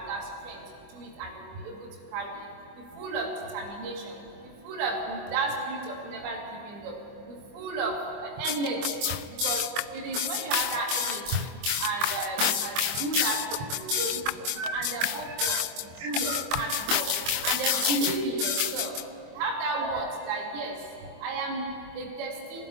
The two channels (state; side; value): late; left; 24 ms